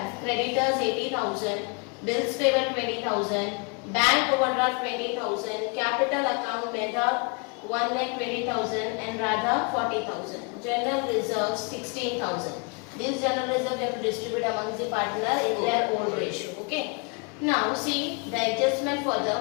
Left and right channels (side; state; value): right; quieter; 33.7 dB